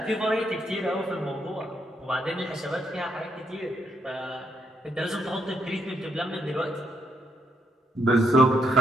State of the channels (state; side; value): normal; both; correlation 0.75